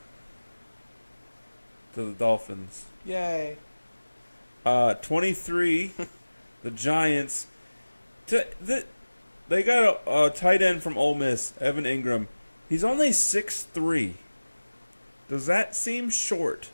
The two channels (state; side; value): inverted; both; correlation -1.00